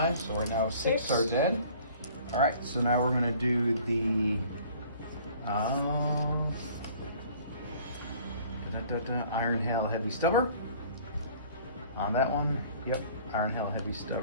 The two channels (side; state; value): both; inverted; correlation -0.52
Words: so right now 6 are dead. All right, so now we're going to do the Iron Hail Heavy Stubber. On that one, yep, Iron Hail Heavy